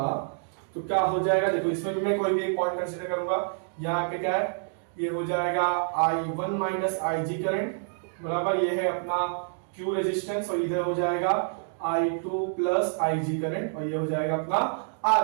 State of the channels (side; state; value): left; silent; digital silence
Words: तो क्या हो जाएगा, देखो इसमें भी मैं कोई भी एक पॉइंट कंसीडर करूंगा, यहाँ पे क्या है, ये हो जाएगा I1 माइनस IG करंट बराबर, ये है अपना Q रेजिस्टेंस, और इधर हो जाएगा I2 प्लस IG करंट, और ये हो जाएगा अपना R